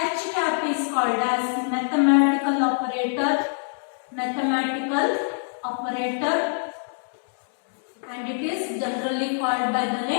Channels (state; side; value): silent; right; digital silence